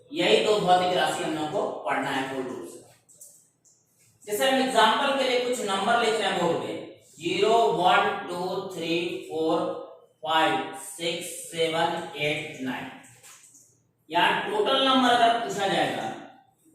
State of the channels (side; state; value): both; identical; correlation 1.00